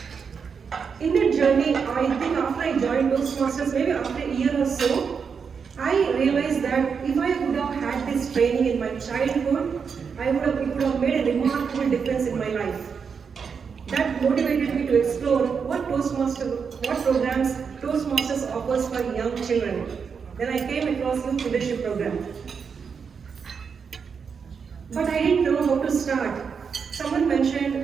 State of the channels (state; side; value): quieter; left; 6.1 dB